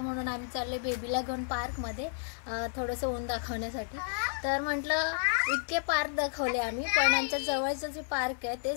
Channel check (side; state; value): right; silent; digital silence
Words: म्हणून आम्ही चालले बेबीला घेऊन पार्कमध्ये थोडंसं ऊन दाखवण्यासाठी। तर म्हटलं इतके पार्क दाखवले आम्ही, पण आमच्या जवळचं जे पार्क आहे